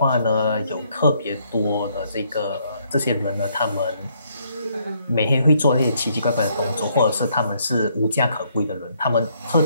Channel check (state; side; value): inverted; both; correlation -0.70